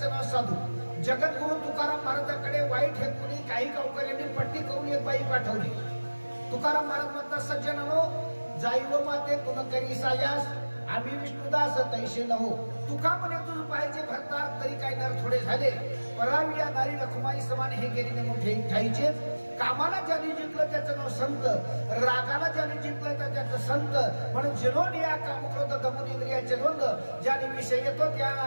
नाव साधू। जगद्गुरु तुकाराम महाराजांकडे वाईट हेतूने काही गावकऱ्यांनी पट्टी करून एक बाई पाठवली। तुकाराम महाराज म्हणतात, सज्जनानो जाईव माते तुन करी सायास आम्ही विष्णुदास तैसे नहो। तुका म्हणे तुझ पाहिजे भरतार तरी काय नर थोडे झाले, परावी या नारी रखुमाई समान हे गेलीने मोठे ठाईचे। कामाला ज्याने जिंकलं त्याचं नाव संत, रागाला ज्याने जिंकलं त्याचं संत। म्हणून जिनोन या कामक्रोध दमून इंद्रियाचे द्वंद्व ज्याने विषय येतो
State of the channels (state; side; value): inverted; both; correlation -1.00